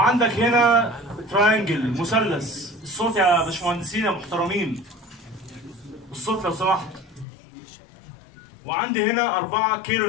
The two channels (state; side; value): drops out; right; at 7.2 s